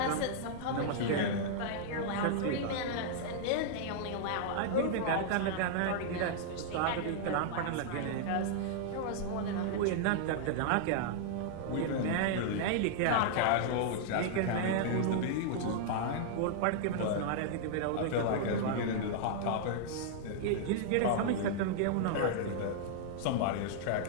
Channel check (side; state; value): both; different; correlation -0.01